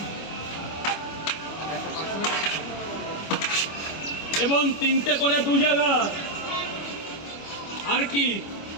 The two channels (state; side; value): late; right; 25 ms